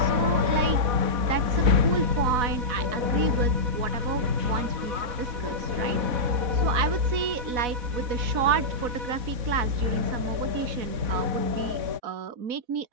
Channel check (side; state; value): left; late; 4.1 ms